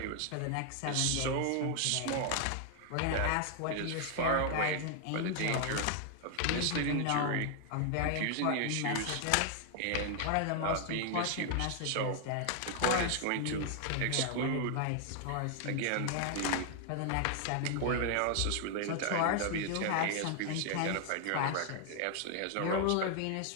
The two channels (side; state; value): both; different; correlation 0.00